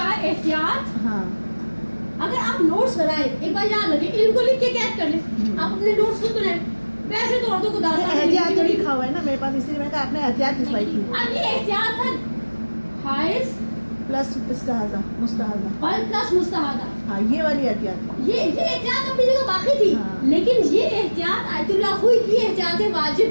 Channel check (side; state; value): both; inverted; correlation -1.00